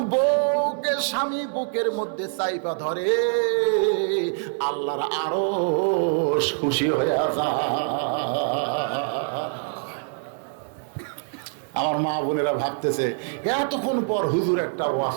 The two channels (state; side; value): silent; left; 62 dB below the other